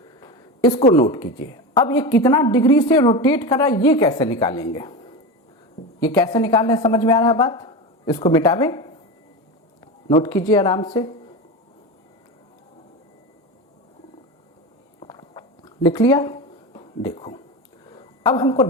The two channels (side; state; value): both; normal; correlation 0.23